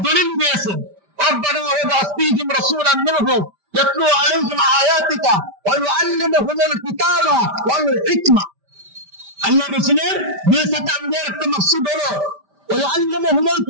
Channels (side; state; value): left; late; 5.1 ms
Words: দলিল দিয়েছেন। রব্বানা ওয়াবআস ফীহিম রাসূলান মিনহুম ইয়াতলু আলাইহিম আয়াতিকা ওয়া ইউআল্লিমুহুমুল কিতাবা ওয়াল হিকমা। আল্লাহর রাসূলের বিশাত আমদের একটা মাকসুদ হলো ওয়া ইউআল্লিমুহুমুল